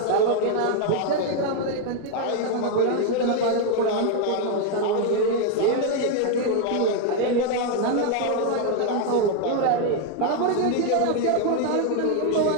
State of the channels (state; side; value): different; both; correlation 0.01